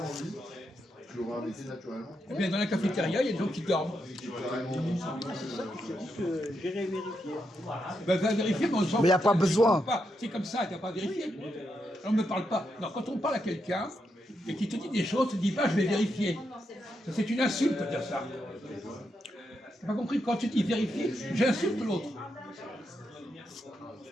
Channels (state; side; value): normal; both; correlation 0.83